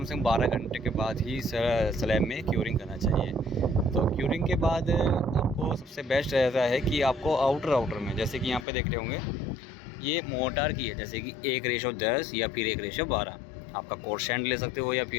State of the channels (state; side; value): drops out; right; at 8.7 s